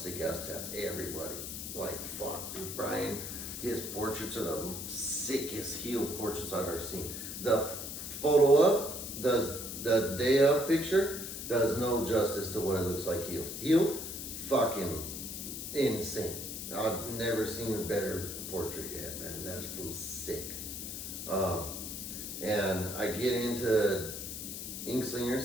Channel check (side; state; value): left; noise; hiss, 7 dB below the sound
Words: ass tats. Everybody, like, fuck, dude. Brian, his portraits are the sickest heel portraits I've ever seen. The photo of the day of picture does no justice to what it looks like healed. Healed, fucking insane. I've never seen a better portrait yet, man. That feels sick. And I get into Ink